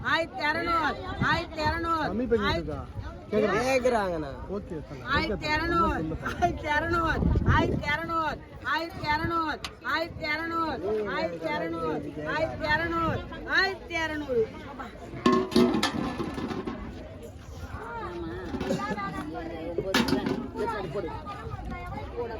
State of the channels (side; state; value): both; identical; correlation 1.00